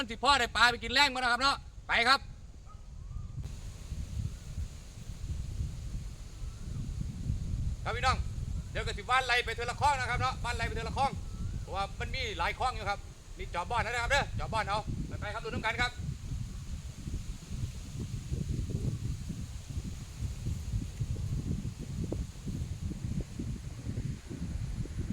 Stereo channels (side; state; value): both; identical; correlation 1.00